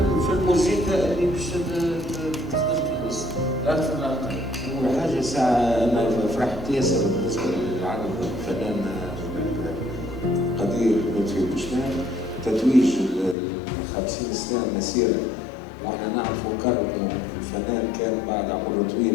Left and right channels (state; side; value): drops out; right; at 13.4 s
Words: في الموسيقى اللي باش تخرج الاسم أكثر لا أقل. أول حاجة ساعة أنا فرحت ياسر بالنسبة للعرض الفنان قدير لطفي بوشنان تتويج 50 سنة مسيرة، واحنا نعرفوا كرمه الفنان كان بعد عمره